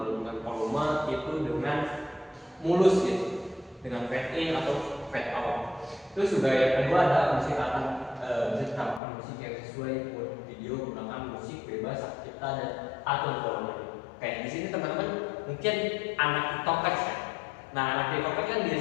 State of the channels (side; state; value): right; drops out; at 9.0 s